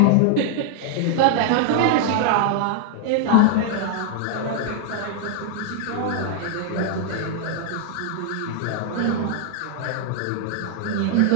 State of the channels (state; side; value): different; both; correlation -0.01